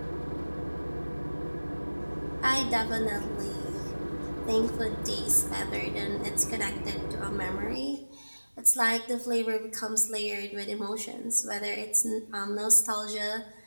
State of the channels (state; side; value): inverted; both; correlation -1.00